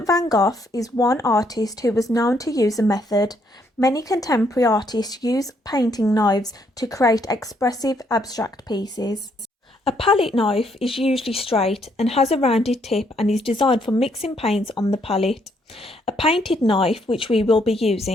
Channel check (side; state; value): both; normal; correlation 0.71